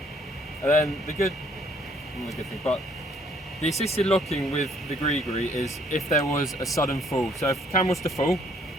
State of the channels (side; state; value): both; normal; correlation 0.64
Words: And then not the good thing, but the assisted locking with the grigri is if there was a sudden fall. So if Cam was to fall,